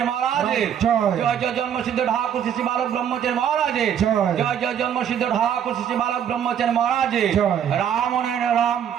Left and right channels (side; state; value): left; quieter; 9.0 dB